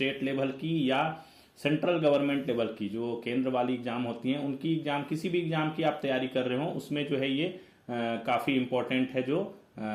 लेवल की या सेंट्रल गवर्नमेंट लेवल की जो केंद्र वाली एग्जाम होती हैं उनकी एग्जाम, किसी भी एग्जाम की आप तैयारी कर रहे हो उसमें जो है ये काफ़ी इम्पोर्टेंट है। जो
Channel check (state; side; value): identical; both; correlation 1.00